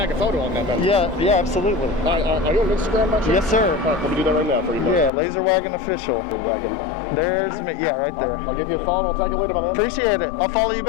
a photo on that, man? Yeah, absolutely. Are you on Instagram, actually? Yes, sir. All right, let me do that right now for you, man. Yeah, Laser Wagon Official. Wagon. There's me. Yeah, right there. I'll give you a follow. I'll tag you later, my man. Appreciate it. I'll follow you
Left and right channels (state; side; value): drops out; right; at 5.1 s